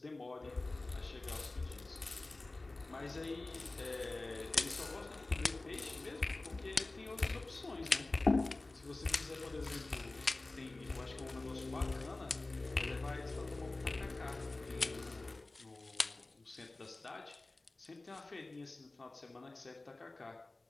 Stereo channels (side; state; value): right; quieter; 3.0 dB